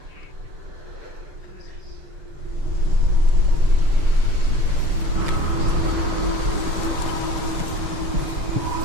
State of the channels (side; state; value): left; late; 6.7 ms